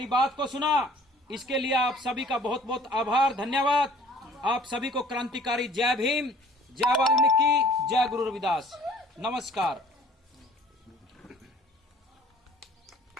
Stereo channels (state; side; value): normal; both; correlation 0.53